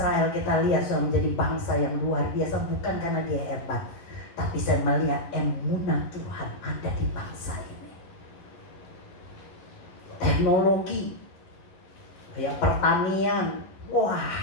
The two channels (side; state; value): right; late; 11 ms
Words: kita lihat sudah menjadi bangsa yang luar biasa. Bukan karena dia hebat, tapi saya melihat emunah Tuhan ada di bangsa ini. Teknologi, kayak pertanian, wah